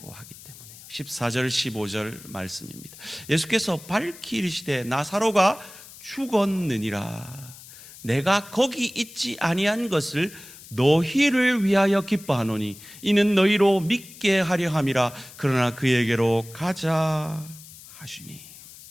하기 때문에요. 14절 15절 말씀입니다. 예수께서 밝히 이르시되 나사로가 죽었느니라. 내가 거기 있지 아니한 것을 너희를 위하여 기뻐하노니 이는 너희로 믿게 하려 함이라. 그러나 그에게로 가자 하시니.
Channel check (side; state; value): left; noise; hiss, 18 dB below the sound